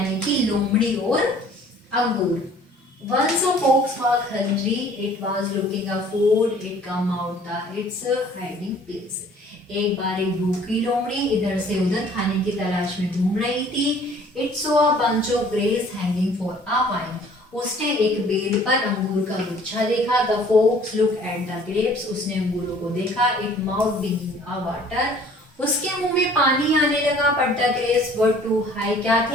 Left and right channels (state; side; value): normal; both; correlation 0.54